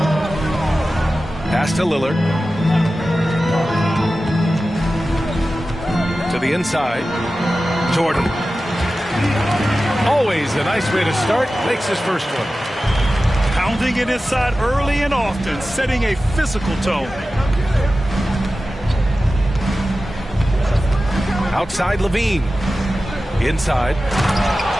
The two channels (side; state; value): both; normal; correlation 0.94